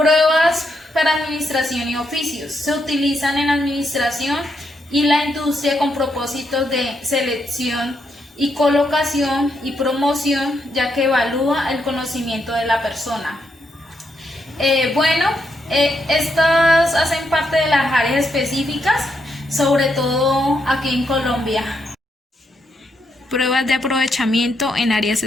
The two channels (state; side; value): normal; both; correlation 0.79